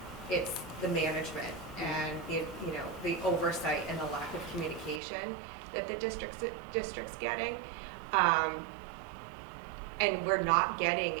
it's the management and the oversight and the lack of communication that the district's getting. And we're not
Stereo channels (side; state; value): left; drops out; at 5.0 s